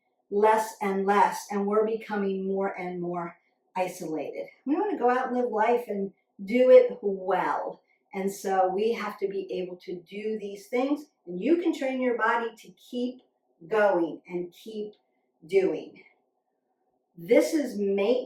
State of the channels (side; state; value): both; identical; correlation 1.00